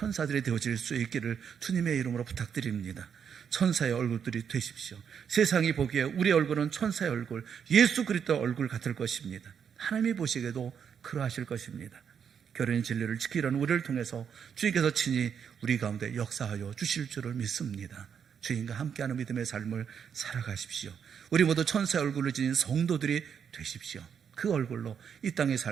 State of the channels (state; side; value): quieter; left; 7.5 dB